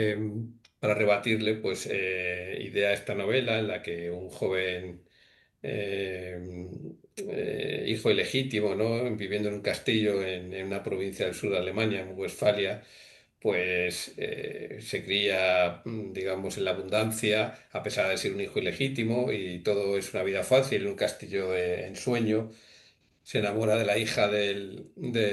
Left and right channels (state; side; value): identical; both; correlation 1.00